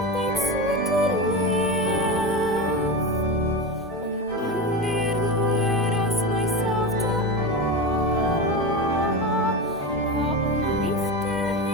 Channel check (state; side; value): normal; both; correlation 0.21